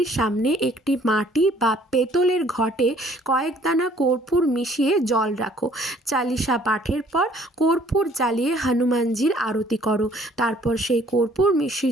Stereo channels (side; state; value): both; normal; correlation 0.59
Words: সামনে একটি মাটি বা পেতলের ঘটে কয়েক দানা কর্পূর মিশিয়ে জল রাখো। চালিশা পাঠের পর কর্পূর জ্বালিয়ে হনুমানজির আরতি করো, তারপর সেই কর্পূর